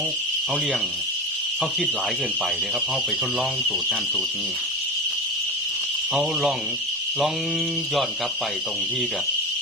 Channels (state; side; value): normal; both; correlation 0.24